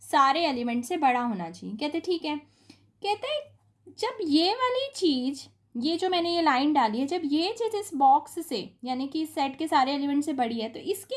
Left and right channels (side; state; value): both; identical; correlation 1.00